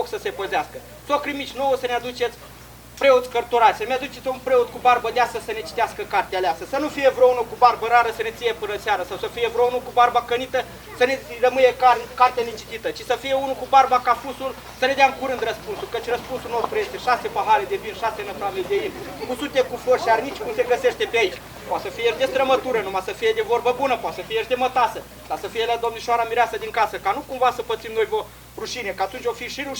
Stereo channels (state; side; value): identical; both; correlation 1.00